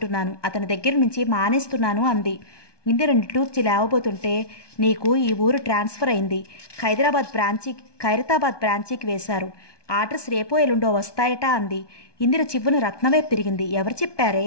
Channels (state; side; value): late; right; 1.2 ms